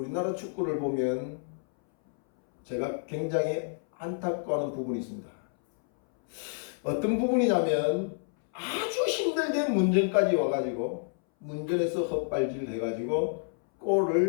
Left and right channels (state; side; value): silent; right; 59 dB below the other